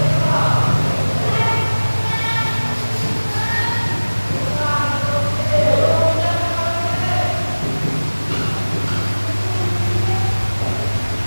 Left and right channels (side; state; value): both; inverted; correlation -1.00